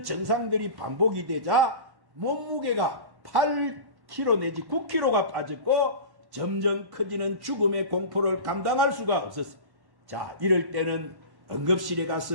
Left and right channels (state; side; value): late; left; 1.1 ms